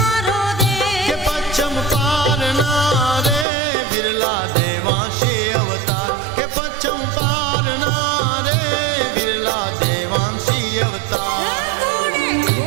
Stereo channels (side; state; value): left; drops out; at 3.5 s